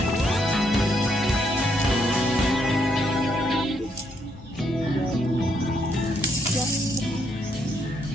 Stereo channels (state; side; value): normal; both; correlation 0.74